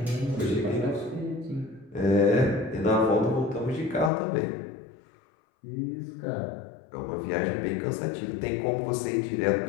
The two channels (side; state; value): right; drops out; at 4.1 s